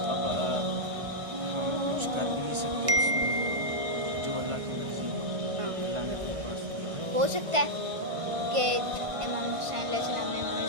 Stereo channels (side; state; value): left; late; 1.6 ms